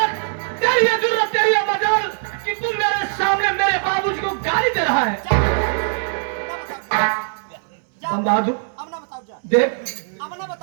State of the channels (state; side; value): silent; left; 65 dB below the other